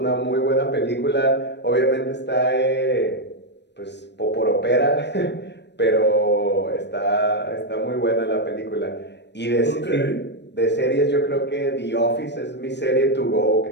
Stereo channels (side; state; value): right; late; 0.50 ms